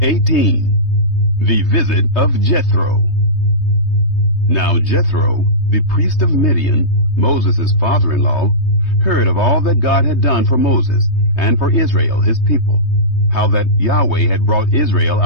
18. The Visit of Jethro. Now Jethro, the priest of Midian, Moses' father-in-law, heard of all that God had done for Moses and for Israel his people, how that Yahweh had brought Israel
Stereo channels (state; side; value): late; right; 3.2 ms